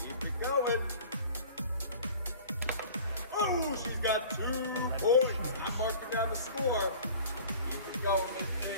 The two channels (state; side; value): inverted; both; correlation -0.44